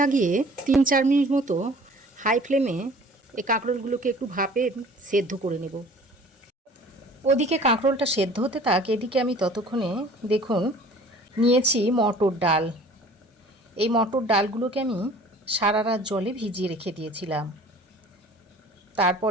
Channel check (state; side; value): normal; both; correlation 0.49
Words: 3-4 মিনিট মতো হাই ফ্লেমে এই কাঁকরোলগুলোকে একটু ভাপে সেদ্ধ করে নেব। ওদিকে কাঁকরোলটা সেদ্ধ হতে থাক, এদিকে আমি ততক্ষণে দেখুন নিয়েছি মটর ডাল। এই মটর ডালগুলোকে আমি সারা রাত জলে ভিজিয়ে রেখে দিয়েছিলাম, তারপর